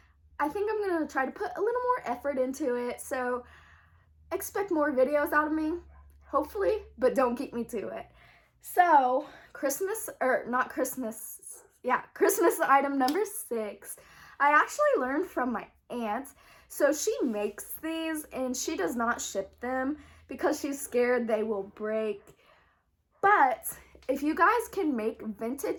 I think I'm going to try to put a little more effort into it. So expect more videos out of me, hopefully, but don't keep me to it. So Christmas item number 6. I actually learned from my aunt. So she makes these and she does not ship them because she's scared they will break. But if you guys can make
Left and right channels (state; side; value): identical; both; correlation 1.00